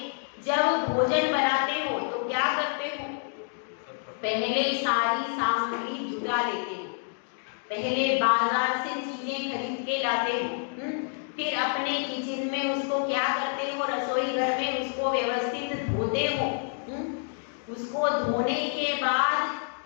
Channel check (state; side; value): silent; right; 58 dB below the other